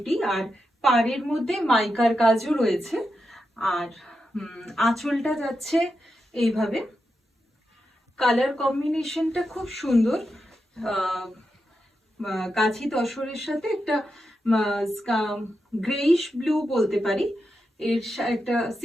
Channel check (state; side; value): normal; both; correlation 0.87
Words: আর পাড়ের মধ্যে মাইকার কাজও রয়েছে। আর আঁচলটা যাচ্ছে এইভাবে। কালার কম্বিনেশনটা খুব সুন্দর, গাছি তসরের সাথে একটা গ্রেইশ ব্লু বলতে পারি। এর একটা